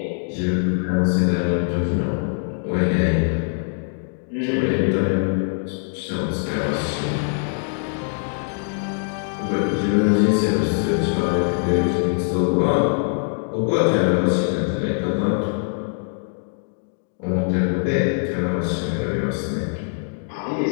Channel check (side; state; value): right; silent; 64 dB below the other